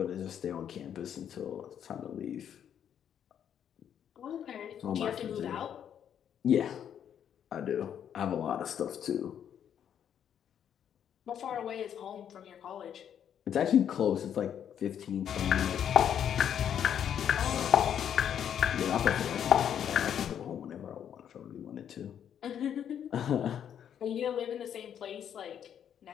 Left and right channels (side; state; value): right; quieter; 9.1 dB